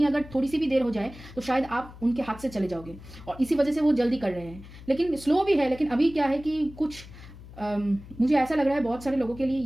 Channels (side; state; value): left; noise; hum, 17 dB below the sound